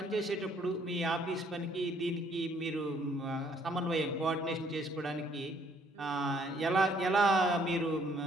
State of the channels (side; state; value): both; normal; correlation 0.64